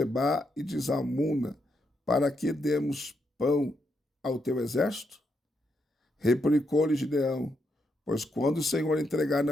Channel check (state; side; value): normal; both; correlation 0.80